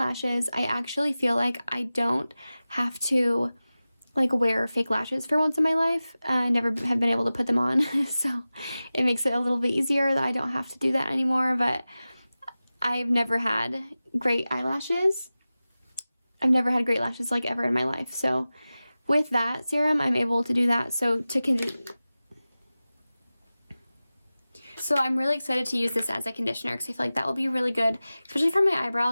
I actually feel like I don't have to like wear fake lashes for once in my life. I never have been able to put them on, so it makes it a little bit easier that I don't have to do that anymore. But I've never had great eyelashes. I've never had great lashes like ever in my life. So with that serum, I'm able to do that. So I'm really excited to use this as a conditioner because I feel like that will be really good, especially for my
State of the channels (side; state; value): both; inverted; correlation -0.96